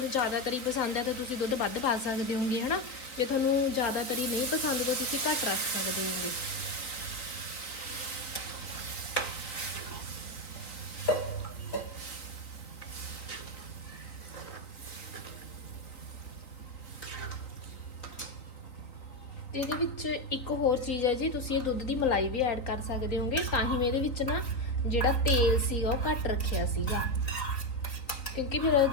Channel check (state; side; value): late; right; 3.9 ms